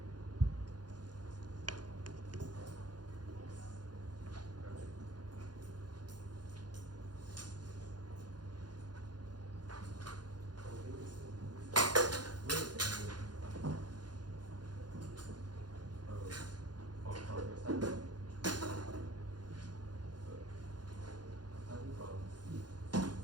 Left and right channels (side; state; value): left; late; 0.70 ms